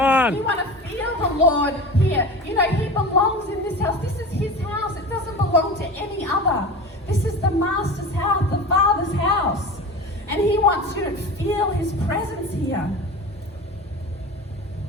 You want to feel the Lord here. He belongs in this house. This is his house. It doesn't belong to any other. This is the Master's house, the Father's house. And he wants you to feel his presence here.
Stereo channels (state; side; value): normal; both; correlation 0.32